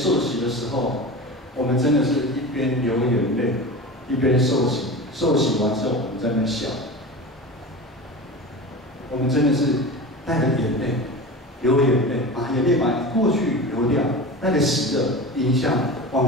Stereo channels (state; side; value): normal; both; correlation 0.30